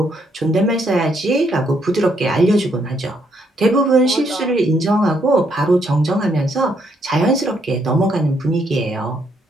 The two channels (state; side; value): normal; both; correlation 0.73